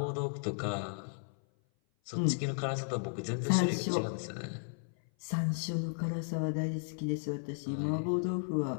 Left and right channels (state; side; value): silent; right; 55 dB below the other